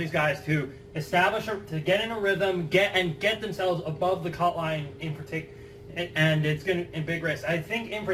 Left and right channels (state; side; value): identical; both; correlation 1.00